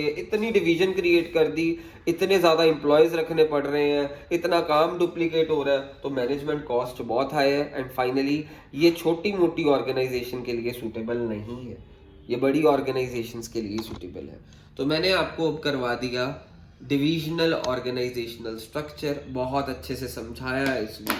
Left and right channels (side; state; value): both; identical; correlation 1.00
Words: इतनी डिवीजन क्रिएट कर दी, इतने ज्यादा एम्प्लॉयज रखने पड़ रहे हैं, इतना काम डुप्लीकेट हो रहा है, तो मैनेजमेंट कॉस्ट बहुत हाई है। एंड फाइनली ये छोटी मोटी ऑर्गेनाइजेशन के लिए सूटेबल नहीं है, ये बड़ी ऑर्गेनाइजेशंस के लिए सूटेबल है। तो मैंने आपको अब करवा दिया डिविजनल ऑर्गेनाइजेशनल स्ट्रक्चर, बहुत अच्छे से समझाया है इस